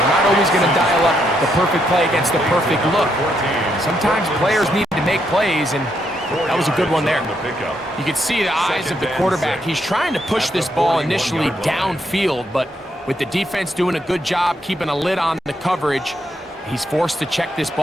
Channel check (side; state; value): both; normal; correlation 0.77